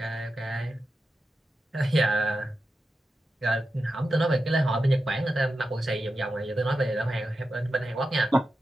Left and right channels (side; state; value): both; normal; correlation 0.90